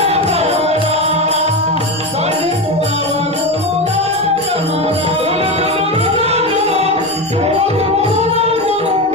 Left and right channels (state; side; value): noise; left; rumble, 29 dB below the sound